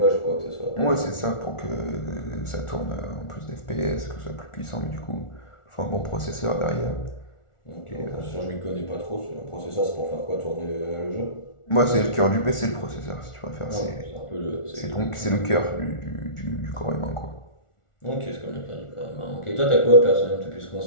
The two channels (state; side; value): late; right; 1.4 ms